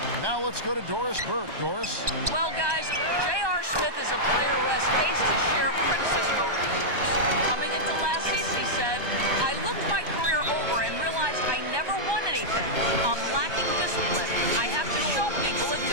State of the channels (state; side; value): late; left; 1.2 ms